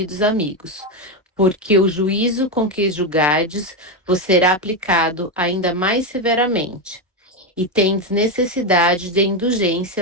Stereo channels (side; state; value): both; normal; correlation 0.10